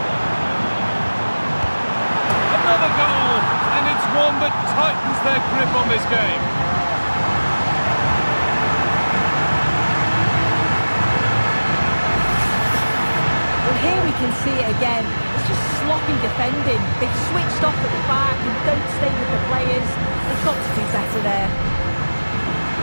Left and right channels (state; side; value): inverted; both; correlation -1.00